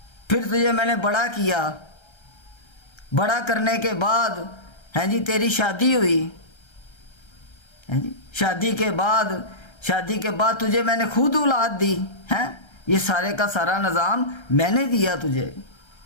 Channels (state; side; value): late; right; 1.3 ms